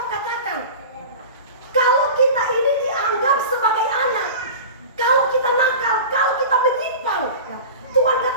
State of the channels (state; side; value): inverted; both; correlation -0.34